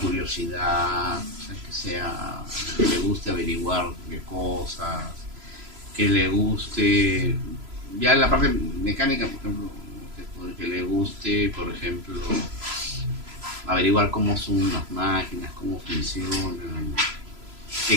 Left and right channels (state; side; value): late; left; 3.0 ms